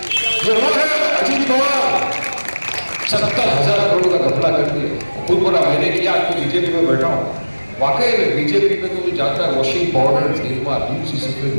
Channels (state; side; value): inverted; both; correlation -1.00